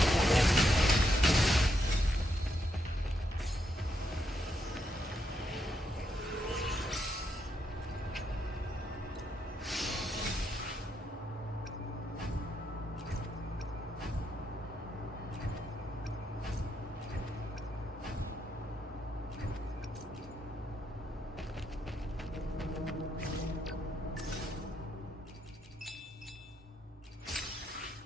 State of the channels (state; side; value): normal; both; correlation 0.79